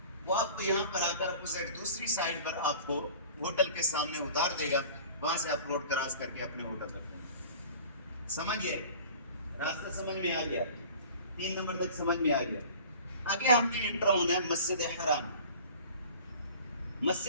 وہ آپ کو یہاں پر آ کر اپوزٹ دوسری سائڈ پر آپ کو ہوٹل کے سامنے اتار دے گا. وہاں سے آپ روڈ کراس کر کے اپنے ہوٹل تک پہنچیں. سمجھ گئے؟ راستہ سمجھ میں آ گیا؟ 3 نمبر تک سمجھ میں آ گیا. آگے ہم نے انٹر ہونا ہے مسجد حرام.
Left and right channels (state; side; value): inverted; both; correlation -0.43